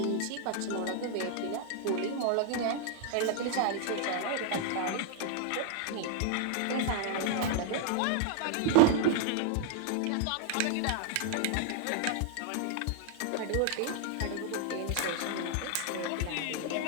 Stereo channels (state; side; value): different; both; correlation -0.01